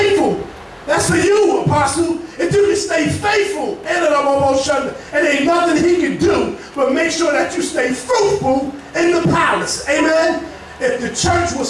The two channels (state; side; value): identical; both; correlation 1.00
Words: That's for you, Apostle. If you can stay faithful, and ain't nothing he can do but make sure that you stay fruitful in the palace. Amen. If the church